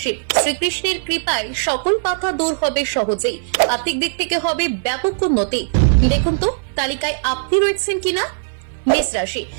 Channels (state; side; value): silent; left; 58 dB below the other